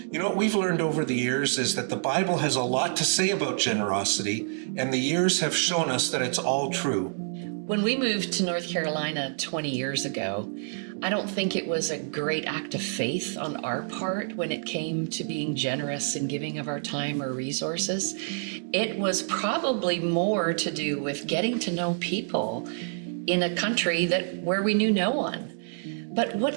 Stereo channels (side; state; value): left; silent; digital silence